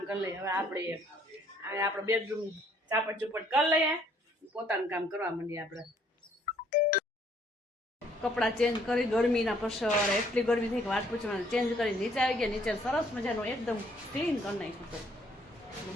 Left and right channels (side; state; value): both; normal; correlation 0.64